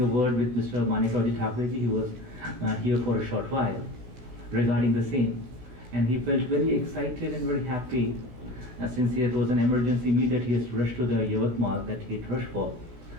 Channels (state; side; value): late; left; 16 ms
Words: word with Mr. Manikauji Thakurji. He was here for a short while regarding the same, and he felt very excited and very happy since it was an emergency meet that he has rushed to the Yavatmal that he had rushed for,